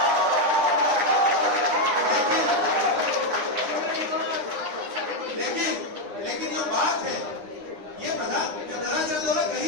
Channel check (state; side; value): late; left; 9.8 ms